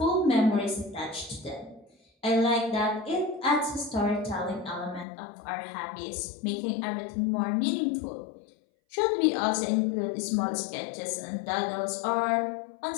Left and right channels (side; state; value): right; drops out; at 5.1 s